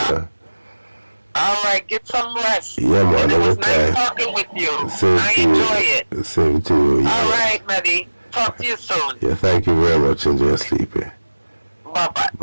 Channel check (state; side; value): inverted; both; correlation -1.00